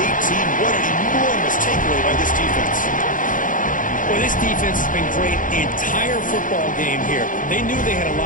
18. What an enormous takeaway by this defense. Well, this defense has been great the entire football game here. They knew they had a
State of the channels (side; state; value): right; late; 0.38 ms